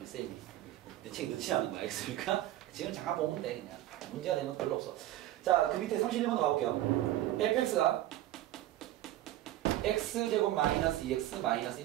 쌤이 내 책 넣지 않은 거 알겠습니까? 지금 잠깐 보면 돼 그냥. 문제가 되면 별로 없어. 자, 그 밑에 31번 가볼게요. fx가 x제곱 마이너스 2x 마이너스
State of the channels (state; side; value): quieter; left; 14.2 dB